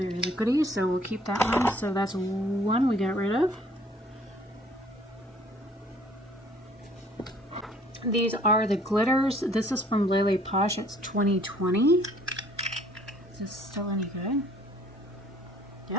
liquidy, so we'll keep that one. So that's one we got rid of. These are the glitters. This is from Lele Posh. It's 2020. Is this still any good?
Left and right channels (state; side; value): normal; both; correlation 0.57